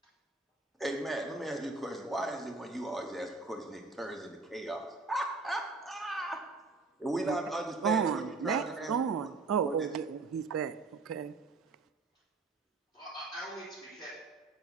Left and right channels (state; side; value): quieter; left; 3.8 dB